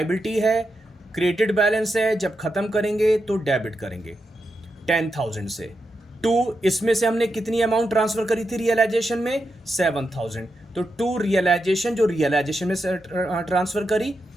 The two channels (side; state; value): both; normal; correlation 0.87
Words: है, क्रेडिट बैलेंस है, जब खत्म करेंगे तो डेबिट करेंगे 10,000 से। 2 इसमें से हमने कितनी अमाउंट ट्रांसफर करी थी रियलाइजेशन में? 7,000। तो 2 रियलाइजेशन, जो रियलाइजेशन में ट्रांसफर करी,